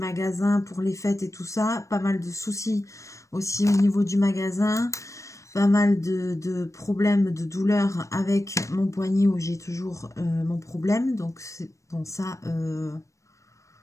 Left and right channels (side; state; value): right; late; 0.15 ms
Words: pour les fêtes et tout ça. Pas mal de soucis aussi au niveau du magasin. Pas mal de problèmes, de douleurs avec mon poignet où j'ai toujours mon problème. Donc, c'est bon, ça...